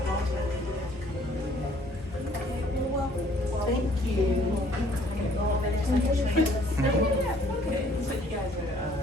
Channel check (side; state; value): both; normal; correlation 0.60